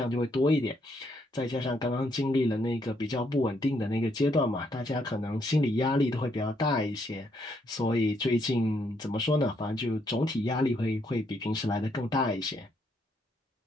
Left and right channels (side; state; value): both; normal; correlation 0.74